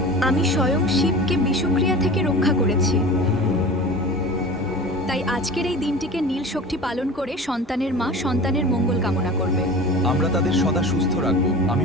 আমি স্বয়ং শিবকে বিষক্রিয়া থেকে রক্ষা করেছি। তাই আজকের এই দিনটিকে নীল শক্তি পালন করে সন্তানের মা সন্তানের মঙ্গল কামনা করবে। আমরা তাদের সদা সুস্থ রাখব, আমি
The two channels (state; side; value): normal; both; correlation 0.36